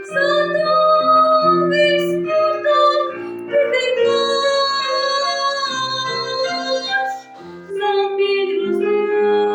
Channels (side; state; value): both; identical; correlation 1.00